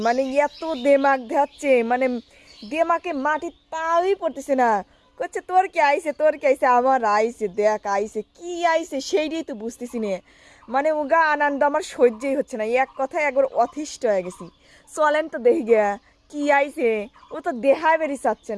মানে এত দেমাগ ধাচ্ছে, মানে দেমাকে মাটির পাওই পড়তেছে না। করছে তোর কি আইছে, তোর কি আইছে? আমার আইছে, দেখ আইছে, কি আইছে সেইটাই তো বুঝতেছি না। মানে উগা আনন্দ আমার সহ্যই হচ্ছে না, এক কথায় একবার অতিষ্ঠ হয়ে গেছি। চলেন তো দেখি গিয়া কি আইছে। ও তো দেহায় বেরি চাচ্ছে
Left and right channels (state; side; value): identical; both; correlation 1.00